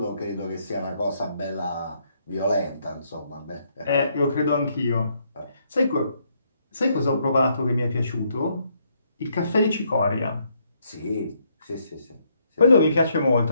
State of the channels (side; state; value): both; inverted; correlation -0.73